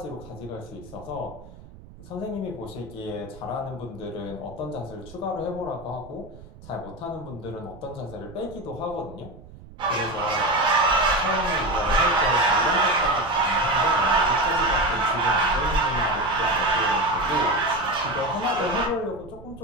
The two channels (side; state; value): right; noise; rumble, 19 dB below the sound